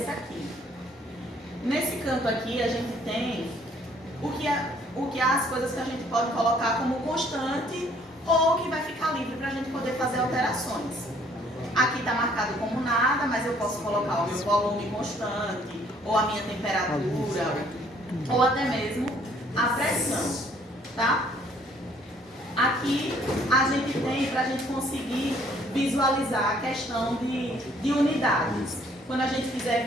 essa aqui. Nesse canto aqui a gente tem o que é as coisas que a gente pode colocar como constante ou que vai ficar livre para a gente poder fazer alterações. Aqui está marcado como nada, mas eu posso colocar o meu volume constante, ou a minha temperatura, ou até mesmo a pressão, tá? Aqui a gente tem para a gente conseguir visualizar a questão de unidades. Quando a gente quiser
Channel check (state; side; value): normal; both; correlation 0.62